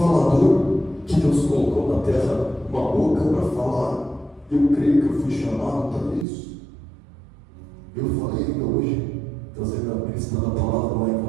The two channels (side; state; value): left; drops out; at 6.2 s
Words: que Deus colocou na terra uma boca para falar, eu creio que eu fui chamado para isso. Eu falei ainda hoje, ministrando a palavra lá em